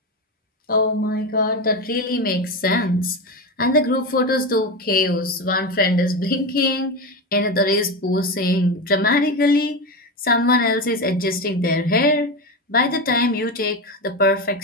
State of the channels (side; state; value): both; normal; correlation 0.18